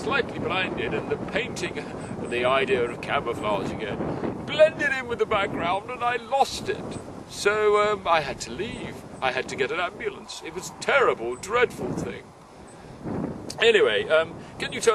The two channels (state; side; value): identical; both; correlation 1.00